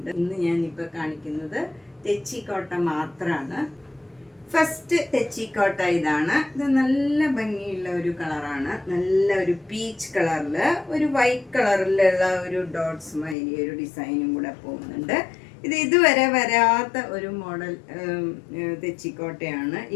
ഇന്ന് ഞാനിപ്പോൾ കാണിക്കുന്നത് തെച്ചിക്കോട്ട മാത്രമാണ്. ഫസ്റ്റ് തെച്ചിക്കോട്ട ഇതാണ്. ഇത് നല്ല ഭംഗിയുള്ള ഒരു കളറാണ്. നല്ല ഒരു പീച്ച് കളറിൽ ഒരു വൈറ്റ് കളറിലുള്ള ഒരു ഡോട്ട്സ് മാതിരി ഒരു ഡിസൈനും കൂടെ പോകുന്നുണ്ട്. ഇത് ഇതുവരെ വരാത്ത ഒരു മോഡൽ തെച്ചിക്കോട്ടയാണ്.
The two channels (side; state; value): right; drops out; at 13.4 s